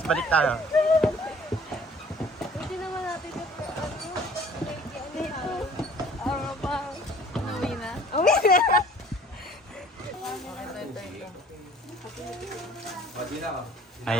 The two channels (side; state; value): both; normal; correlation 0.52